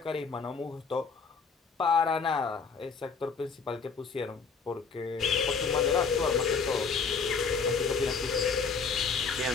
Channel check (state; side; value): quieter; right; 5.3 dB